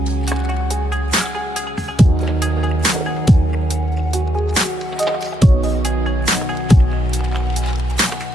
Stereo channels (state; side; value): normal; both; correlation 0.76